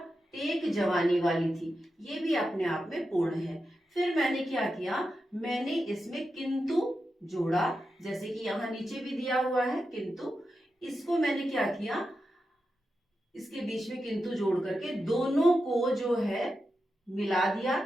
टेक जवानी वाली थी ये भी अपने आप में पूर्ण है। फिर मैंने क्या किया, मैंने इसमें किंतु जोड़ा, जैसे कि यहाँ नीचे भी दिया हुआ है किंतु। इसको मैंने क्या किया, इसके बीच में किंतु जोड़ करके दोनों को जो है मिला दिया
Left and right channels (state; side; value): normal; both; correlation 0.89